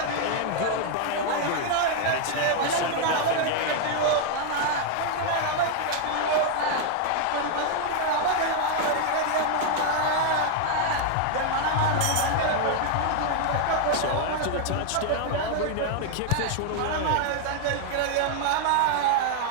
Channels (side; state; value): both; different; correlation 0.00